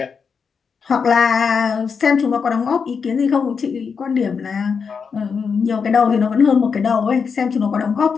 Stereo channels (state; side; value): quieter; right; 5.9 dB